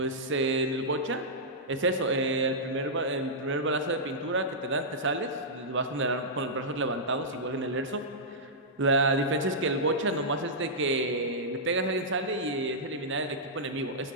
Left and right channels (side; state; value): both; normal; correlation -0.12